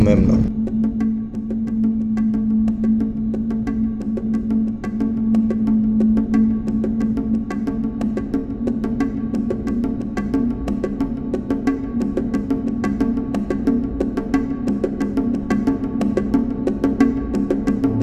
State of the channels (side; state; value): both; identical; correlation 1.00